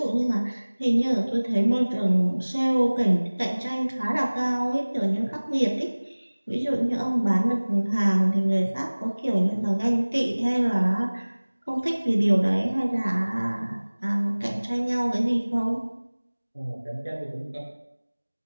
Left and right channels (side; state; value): both; inverted; correlation -1.00